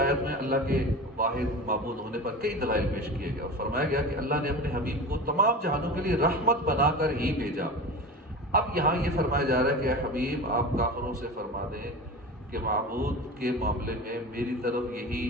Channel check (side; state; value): both; normal; correlation 0.30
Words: میں اللہ کے واحد معبود ہونے پر کئی دلائل پیش کیے گئے اور فرمایا گیا کہ اللہ نے اپنے حبیب کو تمام جہانوں کے لیے رحمت بنا کر ہی بھیجا۔ اب یہاں یہ فرمایا جا رہا ہے کہ اے حبیب آپ کافروں سے فرما دیں کہ معبود کے معاملے میں میری طرف یہی